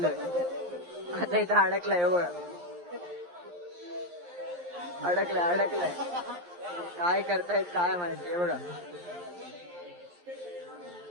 आता इथं अडकलाय बघा. अडकलाय काय करतायत काय माहिती बघा.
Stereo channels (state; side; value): late; left; 11 ms